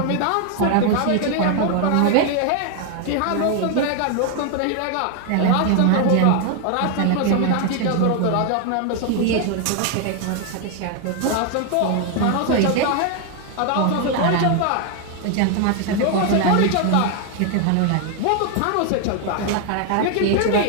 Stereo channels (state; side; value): different; both; correlation 0.01